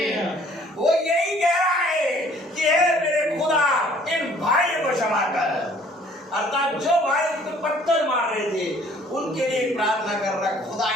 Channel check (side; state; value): both; normal; correlation 0.57